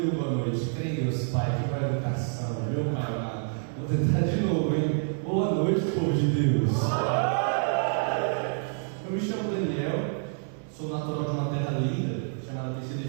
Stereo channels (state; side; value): silent; left; 59 dB below the other